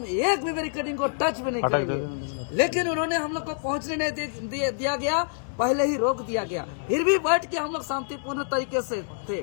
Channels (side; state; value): right; silent; digital silence